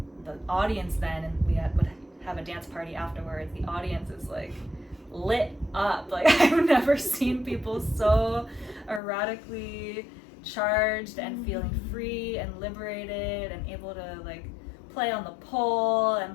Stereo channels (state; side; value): drops out; right; at 9.0 s